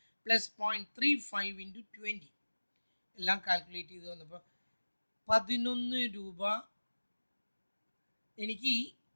plus 0.35 into 20. എല്ലാം കാൽക്കുലേറ്റ് ചെയ്ത് വന്നപ്പോൾ 11 രൂപ എനിക്ക്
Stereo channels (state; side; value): inverted; both; correlation -1.00